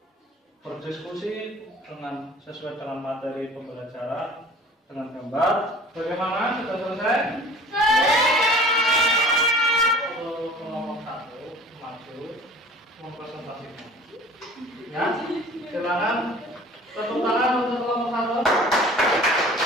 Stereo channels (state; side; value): normal; both; correlation 0.46